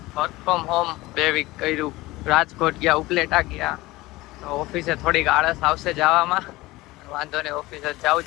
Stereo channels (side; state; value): right; quieter; 19.7 dB